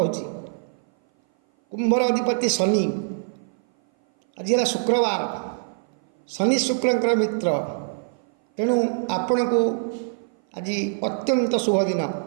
कुंभर अधिपति शनि। आज है शुक्रवार। शनि शुक्रंकर मित्र, तेणु आपण को आज अत्यंत शुभ दिन।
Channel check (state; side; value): silent; left; 58 dB below the other